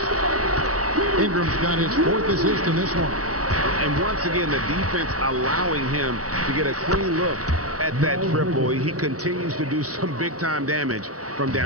Ingram's got his 4th assist in this one. And once again, the defense allowing him to get a clean look at that triple. He continues to do some big-time damage from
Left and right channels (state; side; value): late; left; 0.67 ms